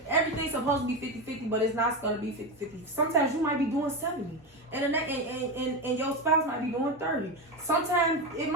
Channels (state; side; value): normal; both; correlation 0.16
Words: supposed to be 50-50, but it's not gonna be 50-50. Sometimes you might be doing 70, and your spouse might be doing 30. Sometimes it